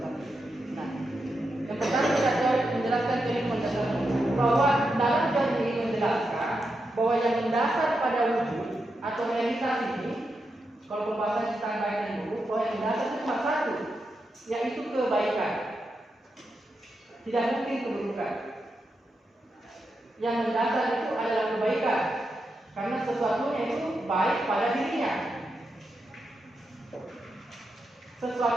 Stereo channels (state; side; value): normal; both; correlation 0.86